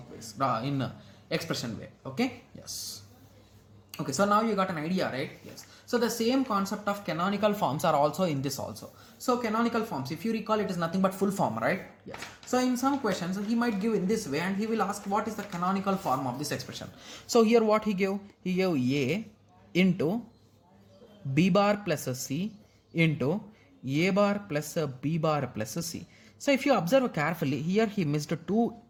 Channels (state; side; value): identical; both; correlation 1.00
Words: ways, in expression way. Okay? Yes. Okay, so now you got an idea, right? Yes. So the same concept of canonical forms are also in this also. So canonical forms, if you recall, it is nothing but full form, right? Yes. So in some questions, he might give in this way and he will ask what is the canonical form of this expression. So here what he gave? He gave A into B bar plus C into A bar plus B bar plus C. So if you observe carefully, here he missed two